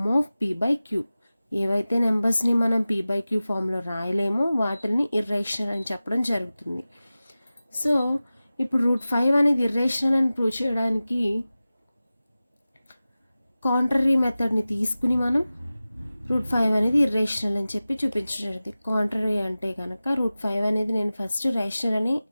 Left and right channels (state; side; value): inverted; both; correlation -0.96